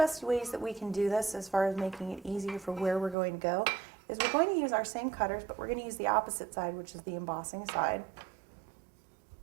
ways that we can do this as far as making it easier for where we're going to go is we're going to use our same cutters, but we're going to use the opposite side, which is the embossing side.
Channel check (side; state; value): left; drops out; at 3.2 s